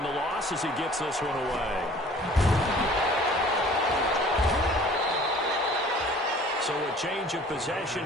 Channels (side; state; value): both; normal; correlation 0.50